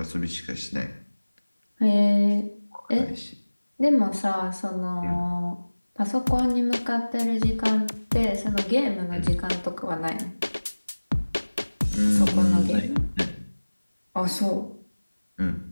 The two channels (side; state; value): both; inverted; correlation -1.00